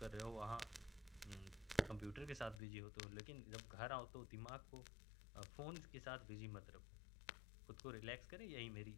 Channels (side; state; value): right; drops out; at 2.6 s